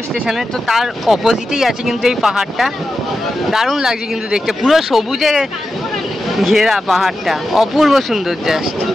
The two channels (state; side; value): normal; both; correlation 0.90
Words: স্টেশনে। তো তার অপোজিটেই আছে কিন্তু এই পাহাড়টা। দারুণ লাগছে কিন্তু দেখতে, পুরো সবুজে ঘেরা পাহাড়টা, অপূর্ব সুন্দর জাস্ট।